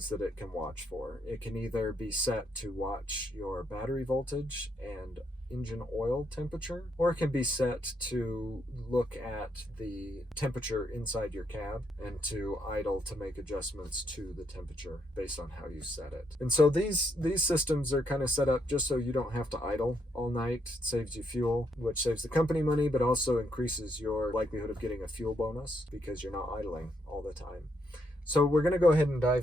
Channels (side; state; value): both; normal; correlation 0.76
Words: that it can watch for. It can either be set to watch your battery voltage and engine oil temperature, or it can be set to look at the temperature inside your cab and to idle to make adjustments to the temperature based on how you set it. And so these systems are kind of set up just so you don't have to idle all night. It saves you fuel, which saves the company money, but also increases your likelihood of getting a fuel bonus because you're not idling all the time. So we're going to go ahead and